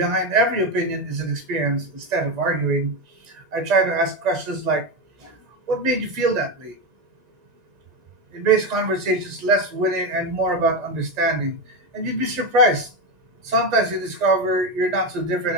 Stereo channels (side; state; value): left; late; 1.9 ms